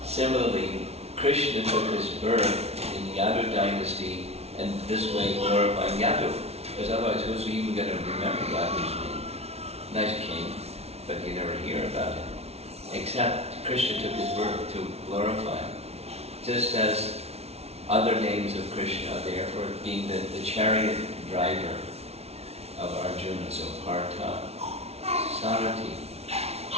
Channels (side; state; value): left; late; 0.31 ms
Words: similarly, Krishna took his birth in the Yadu dynasty and this way glorifying Yadu, because otherwise who's even going to remember Yadu's name? Nice king, but you never hear about him. Except Krishna took his birth to glorify him. Just as other names of Krishna are there for being the chariot driver of Arjuna, so Partha, Sarati,